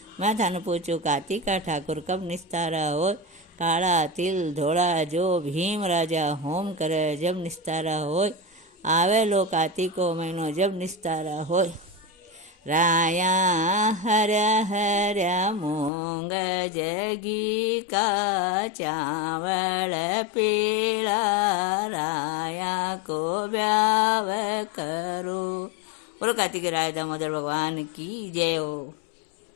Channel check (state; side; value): drops out; right; at 15.9 s